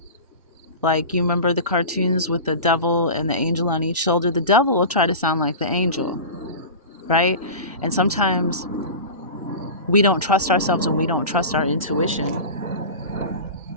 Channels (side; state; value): both; inverted; correlation -0.30